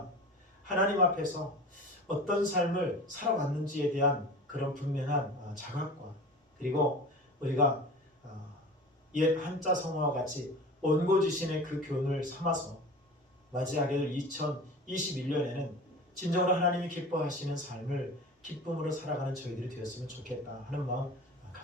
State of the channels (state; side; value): normal; both; correlation 0.36